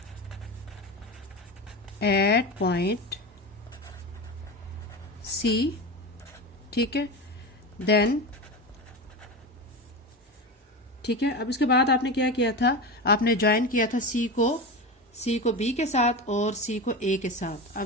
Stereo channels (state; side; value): normal; both; correlation 0.24